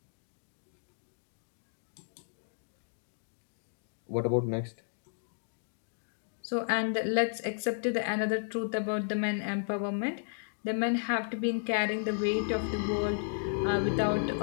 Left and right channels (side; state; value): right; silent; digital silence